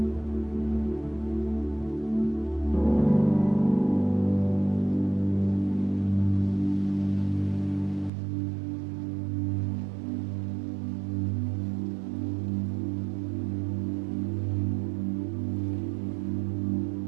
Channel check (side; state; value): left; drops out; at 8.1 s